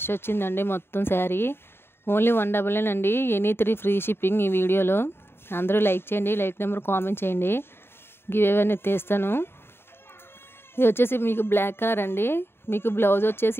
వచ్చిందండి మొత్తం శారీ. ఓన్లీ 199 అండి. ఎనీ 3 ఫ్రీ షిప్పింగ్ ఈ వీడియోలో. అందరూ లైక్ చేయండి, లైక్ నెంబర్ కామెంట్ చేయండి. గివ్ అవే అనేది తీస్తాను. ఇది వచ్చేసి మీకు బ్లాక్ కలర్ అండి. మీకు బ్లౌజ్ వచ్చేసి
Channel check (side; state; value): right; late; 0.11 ms